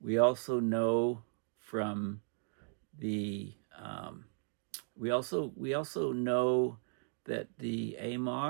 We also know from the we also know that the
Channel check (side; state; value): left; silent; digital silence